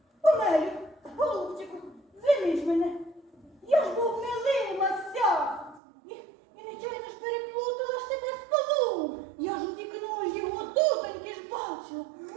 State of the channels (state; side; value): drops out; left; at 5.8 s